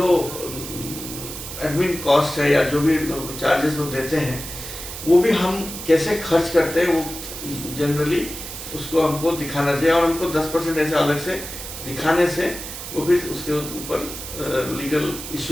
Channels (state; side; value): noise; right; hiss, 9 dB below the sound